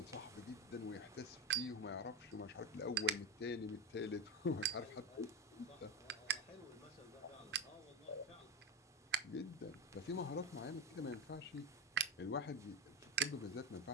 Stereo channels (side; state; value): both; normal; correlation 0.17